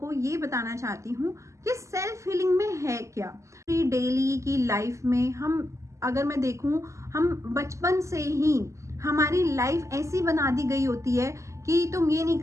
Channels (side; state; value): left; late; 0.14 ms